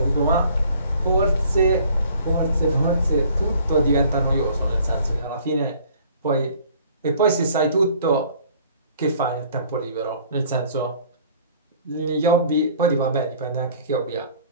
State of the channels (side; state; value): both; inverted; correlation -0.54